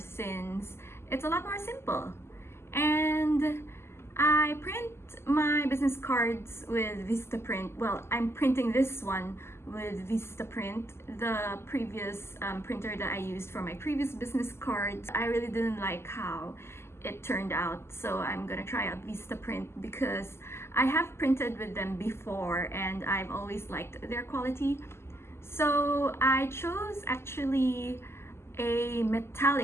it's a lot more simple. And I print my business cards with Vistaprint. Well, I'm printing this one with Vistaprint, the previous printer that I used for my previous business cards. I really didn't like how it turned out, so I'm gonna try out Vistaprint because I have printed with them before and I've always liked their quality. So I chose actually a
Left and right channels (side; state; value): right; late; 0.12 ms